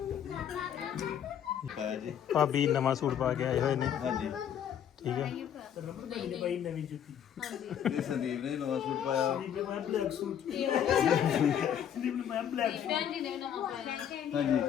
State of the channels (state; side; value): quieter; right; 9.3 dB